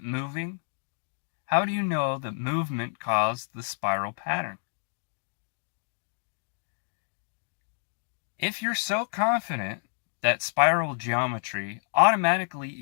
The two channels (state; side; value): silent; right; digital silence